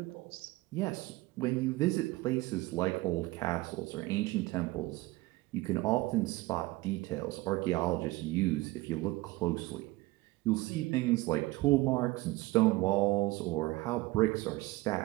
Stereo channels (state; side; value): quieter; left; 20.5 dB